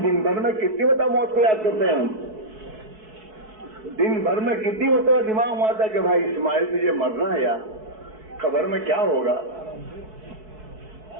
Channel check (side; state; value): left; late; 4.6 ms